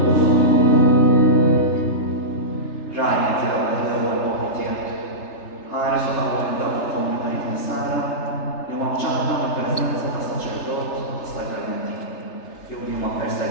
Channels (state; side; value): late; right; 3.3 ms